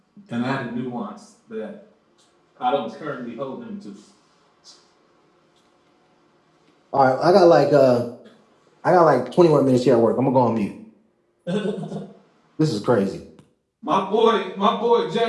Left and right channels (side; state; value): both; identical; correlation 1.00